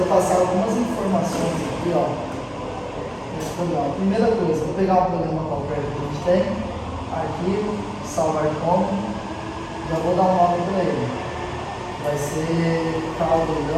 passar algumas informações aqui, ó, nesse programa. Primeira coisa, vou pegar um programa qualquer que a gente tem, arquivo, salvar como, já vou dar um nome para ele. Vai ser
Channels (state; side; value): identical; both; correlation 1.00